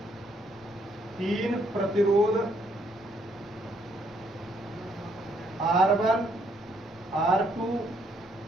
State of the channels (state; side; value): normal; both; correlation 0.70